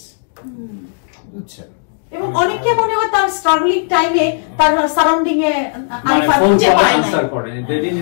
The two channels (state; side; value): silent; right; digital silence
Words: বুঝছেন? এবং অনেকে মনে হয় তার স্ট্রাগলিং টাইমে তার সারাউন্ডিং এ মানে আরিফা ফোন খুঁজে কল পায় আনসার নাই। করে, they didn't